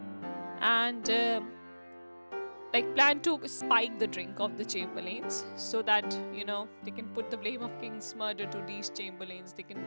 And like plan to spike the drink of the chamberlains so that they can put the blame of king's murder to these chamberlains. They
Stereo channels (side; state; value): both; inverted; correlation -1.00